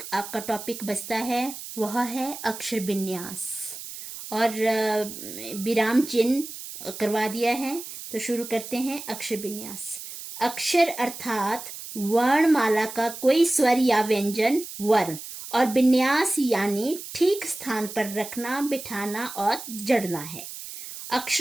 आपका टॉपिक बचता है, वह है अक्षर विन्यास। और विराम चिन्ह करवा दिया है, तो शुरू करते हैं अक्षर विन्यास। अक्षर अर्थात वर्णमाला का कोई स्वर या व्यंजन वर्ण, और विन्यास यानी ठीक स्थान पर रखना, बिठाना और जड़ना है।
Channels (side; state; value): right; noise; hiss, 11 dB below the sound